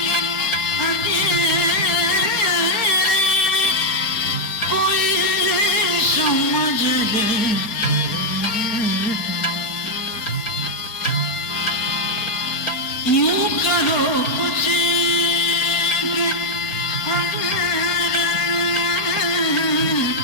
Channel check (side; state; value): right; late; 4.4 ms